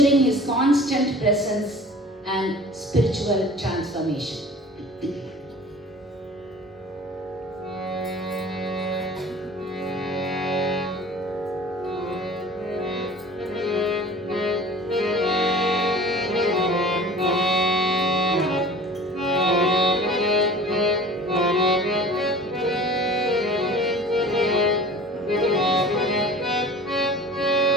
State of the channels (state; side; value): normal; both; correlation 0.43